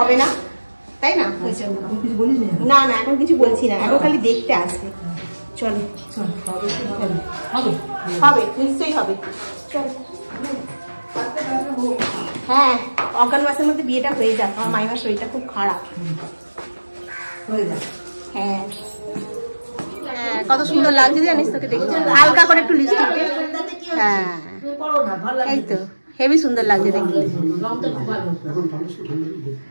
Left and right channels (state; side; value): inverted; both; correlation -1.00